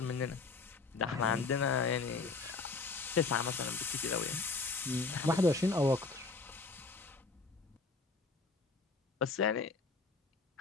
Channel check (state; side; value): quieter; right; 4.1 dB